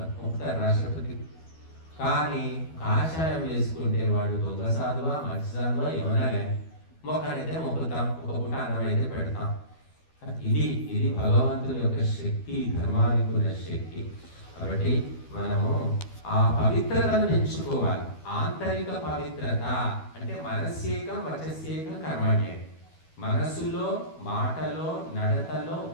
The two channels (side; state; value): right; late; 12 ms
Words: రాష్ట్రపతి. కానీ కాషాయం వేసుకుంటే వాడు దొంగ సాధువా, మంచి సాధువా ఏమన్నా కానీ మొక్కనైతే మొక్కుతాం, ఒక పూట అన్నం అయితే పెడతాం. ఇది భగవంతుని యొక్క శక్తి, ధర్మానికి ఉన్న శక్తి. కాబట్టి మనము ఆ పవిత్రతను పెంచుకోవాలి. ఆంతరిక పవిత్రత అంటే మనస్యేకం వచస్యేకం కర్మణ్యం. మనస్సులో, మాటలో, నడతలో